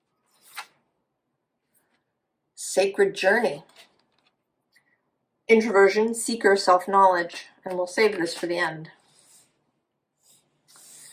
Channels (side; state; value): both; identical; correlation 1.00